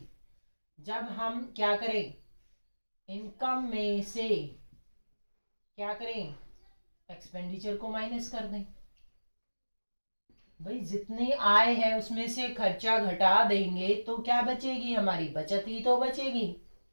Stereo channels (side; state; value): both; inverted; correlation -1.00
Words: जब हम क्या करें, इनकम में से क्या करें, एक्सपेंडिचर को माइनस कर दें। भाई जितनी आय है उसमें से खर्चा घटा देंगे तो क्या बचेगी, हमारी बचत ही तो बचेगी।